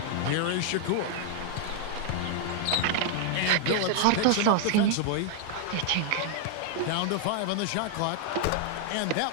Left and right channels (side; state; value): both; different; correlation 0.00